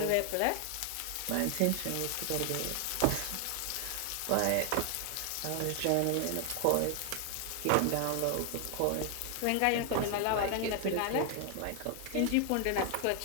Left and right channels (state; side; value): different; both; correlation 0.00